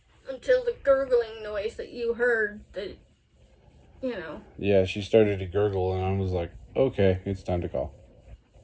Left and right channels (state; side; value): identical; both; correlation 1.00